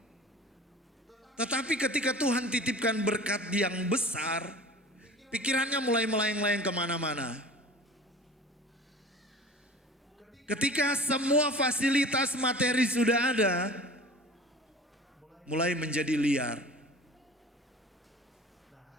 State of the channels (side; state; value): both; normal; correlation 0.41